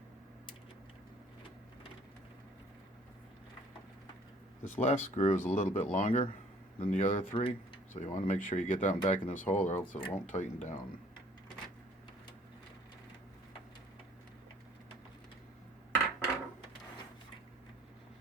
This last screw is a little bit longer than the other 3, so you want to make sure you get that one back in this hole or else it won't tighten down.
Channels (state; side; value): normal; both; correlation 0.57